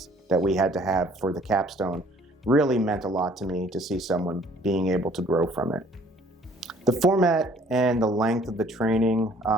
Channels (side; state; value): both; normal; correlation 0.56